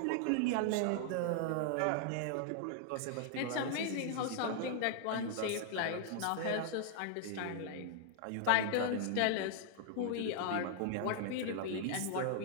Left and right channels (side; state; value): both; different; correlation -0.01